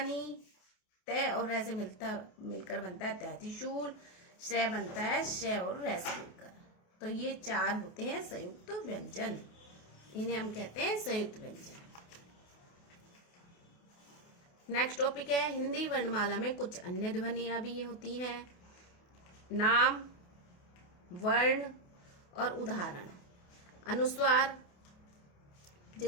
तय और रै से मिलकर बनता है तै त्रिशूल, श्रेय बनता है शय और रै से मिलकर। तो ये 4 होते हैं संयुक्त व्यंजन, इन्हें हम कहते हैं संयुक्त व्यंजन। नेक्स्ट टॉपिक है, हिंदी वर्णमाला में कुछ अन्य ध्वनियां भी होती हैं। नाम, वर्ण और उदाहरण। अनुस्वार,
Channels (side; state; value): right; late; 28 ms